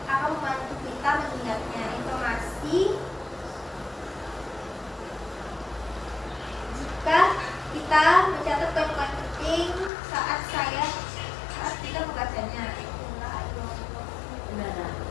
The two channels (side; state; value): right; drops out; at 9.9 s